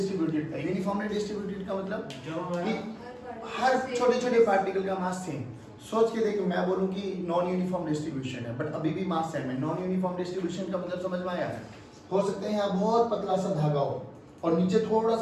था। यूनिफॉर्मली डिस्ट्रीब्यूटेड का मतलब कि हर छोटे छोटे पार्टिकल का मास सेम। सोच के देखो, मैं बोलूं कि नॉन यूनिफॉर्म डिस्ट्रीब्यूशन है बट अभी भी मास सेम है। नॉन यूनिफॉर्म डिस्ट्रीब्यूशन का मतलब समझ में आया? हो सकता है यहाँ बहुत पतला सा धागा हो और नीचे थोड़ा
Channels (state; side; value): identical; both; correlation 1.00